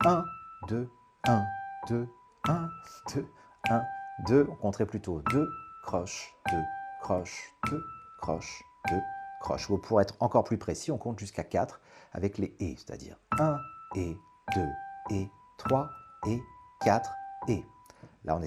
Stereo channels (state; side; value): identical; both; correlation 1.00